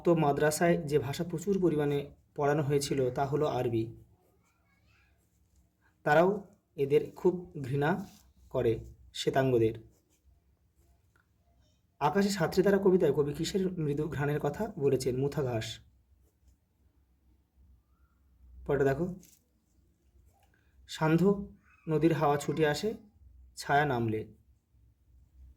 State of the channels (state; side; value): identical; both; correlation 1.00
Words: মাদ্রাসায় যে ভাষা প্রচুর পরিমাণে পড়ানো হয়েছিল তা হলো আরবি। তারাও এদের খুব ঘৃণা করে, শ্বেতাঙ্গদের। আকাশে সাতটি তারা কবিতায় কবি কিসের মৃদু ঘ্রাণের কথা বলেছেন? মুথা ঘাস। পরেটা দেখো, সান্ধ্য নদীর হাওয়া ছুটে আসে ছায়া নামলে।